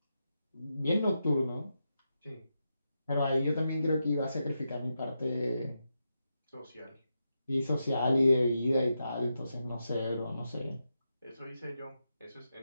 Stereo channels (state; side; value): inverted; both; correlation -0.86